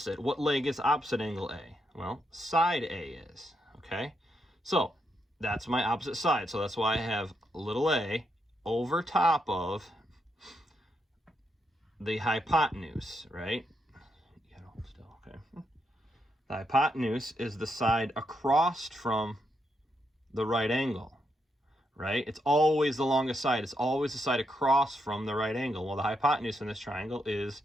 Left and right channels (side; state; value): both; normal; correlation 0.81